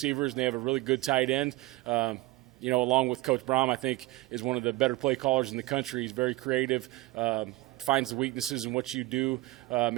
and they have a really good tight end. Along with Coach Braum, I think is one of the better play callers in the country. He's very creative. Finds the weaknesses in what you do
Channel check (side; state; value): left; quieter; 19.3 dB